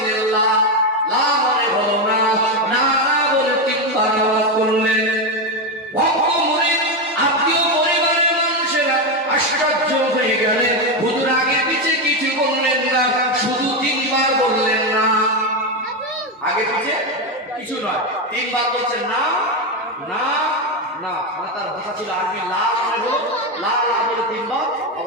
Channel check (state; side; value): normal; both; correlation 0.10